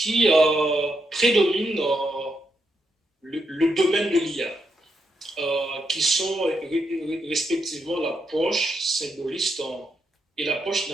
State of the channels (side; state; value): both; normal; correlation 0.81